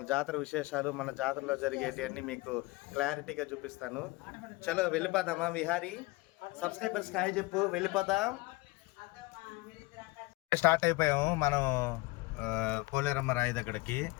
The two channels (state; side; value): quieter; right; 21.6 dB